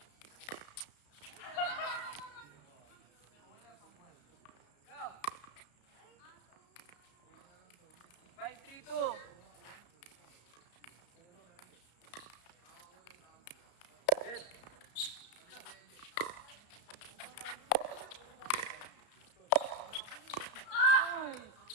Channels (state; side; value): late; right; 33 ms